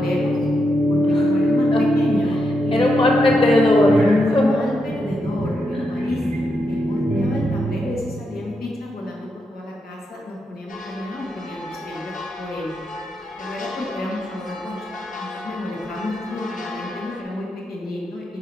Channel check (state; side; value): normal; both; correlation 0.83